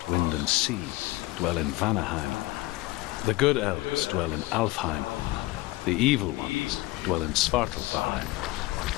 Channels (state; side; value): quieter; right; 19.7 dB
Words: wind, and sea dwell in Vanaheim. The good elves dwell in Alfheim. The evil ones dwell in Svartalfheim.